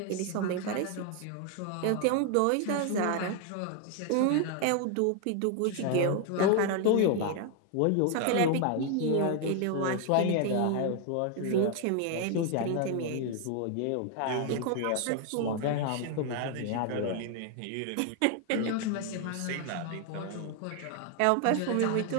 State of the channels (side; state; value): both; different; correlation 0.00